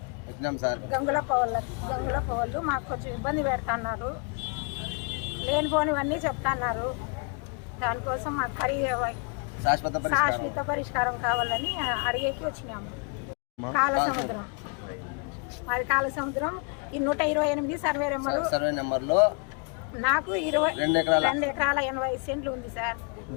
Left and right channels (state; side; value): quieter; right; 37.2 dB